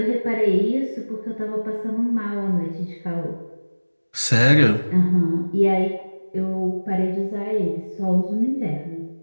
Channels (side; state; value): both; inverted; correlation -1.00